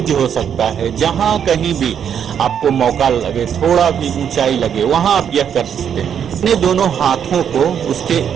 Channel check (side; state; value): left; quieter; 8.3 dB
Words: हो सकता है, जहां कहीं भी आपको मौका लगे, थोड़ा भी ऊंचाई लगे, वहां आप यह कर सकते हैं। अपने दोनों हाथों को उसके